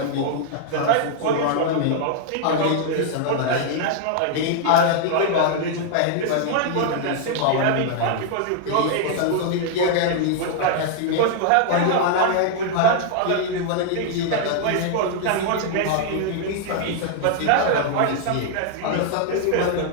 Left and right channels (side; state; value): both; different; correlation 0.00